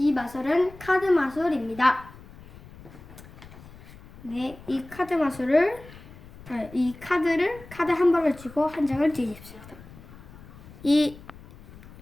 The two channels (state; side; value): noise; left; rumble, 19 dB below the sound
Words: 마술은 카드 마술입니다. 네, 이 카드를 카드 한 벌을 쥐고 한 장을 뒤집습니다. 이